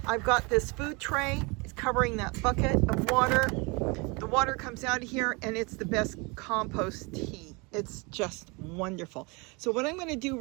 I've got this food tray. It's covering that bucket of water. The water comes out of here, and it's the best compost tea. It's just wonderful. So what I'm going to do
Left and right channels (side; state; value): left; quieter; 28.5 dB